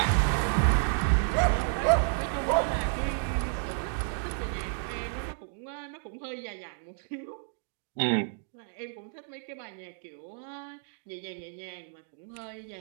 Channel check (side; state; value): left; silent; 57 dB below the other